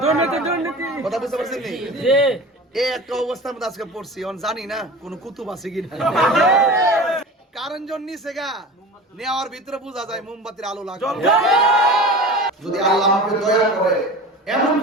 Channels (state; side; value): normal; both; correlation 0.35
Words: কথা বুঝতে পারছেন নি? এই একটা অবস্থার মধ্যে আজকে পড়ছি, জানি না কোন কুতুব আছে কিনা। কারণ জন নিচে গা নেওয়ার ভিতরে বোঝা যায় মোমবাতির আলো লাগে। যদি আল্লাহ আমাকে দয়া করে এমন